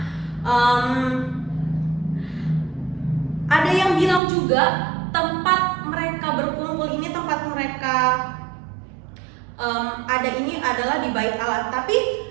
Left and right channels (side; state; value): left; drops out; at 4.2 s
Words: ada yang bilang juga tempat mereka berkumpul ini, tempat mereka ada ini adalah di Bait Allah. Tapi